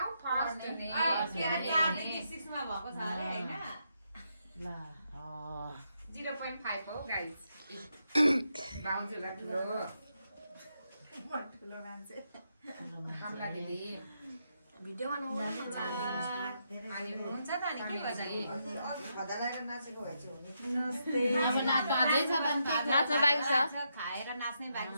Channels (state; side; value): inverted; both; correlation -0.81